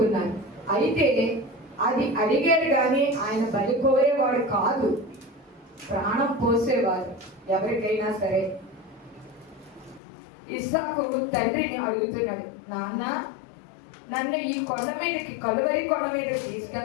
అయితే అది అడిగారు కానీ ఆయన బలి కోరేవాడు కాదు, ప్రాణం పోసేవారు ఎవరికైనా సరే. ఇస్సాకు తండ్రిని అడుగుతున్నాడు, నాన్న నన్ను ఈ కొండ మీదకి, కలువరి కొండ మీదకి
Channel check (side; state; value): right; drops out; at 10.0 s